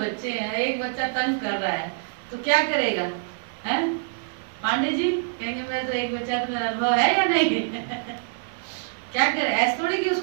हैं, एक बच्चा तंग कर रहा है तो क्या करेगा? हैं पांडे जी कहेंगे मैं तो एक बच्चा तो मेरा अनुभव है या नहीं? क्या करे? ऐसे थोड़ी कि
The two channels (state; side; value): silent; left; 61 dB below the other